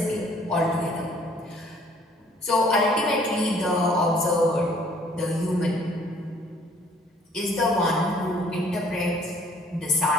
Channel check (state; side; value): normal; both; correlation 0.58